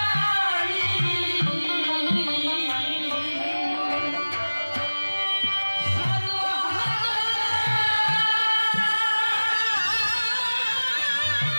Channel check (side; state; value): both; inverted; correlation -1.00